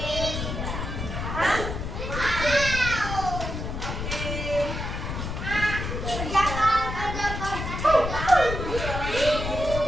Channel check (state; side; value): noise; left; rumble, 4 dB below the sound